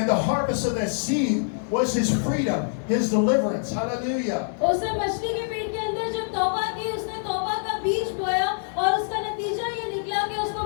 the harvest of that seed was his freedom, his deliverance. Hallelujah. उसने मछली के पेट के अंदर जब तौबा की, उसने तौबा का बीज बोया और उसका नतीजा ये निकला कि उसको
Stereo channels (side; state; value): right; silent; digital silence